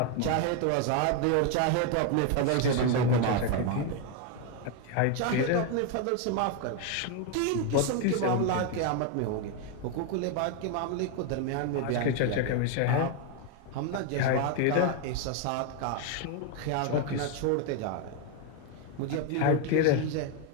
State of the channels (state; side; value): different; both; correlation 0.01